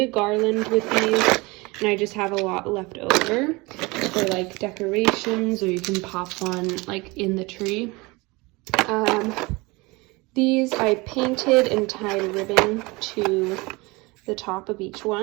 a garland with these, and I just have a lot left over for like decorations, or you can pop one like in the tree. These I painted and tied ribbon to the top of each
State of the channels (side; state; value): left; quieter; 24.7 dB